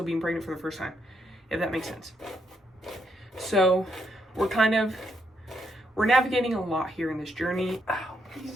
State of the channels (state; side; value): normal; both; correlation 0.77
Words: being pregnant for the first time, if that makes sense. So we're navigating a lot here in this journey. Ow,